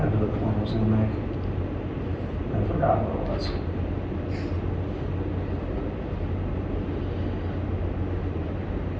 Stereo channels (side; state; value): both; identical; correlation 1.00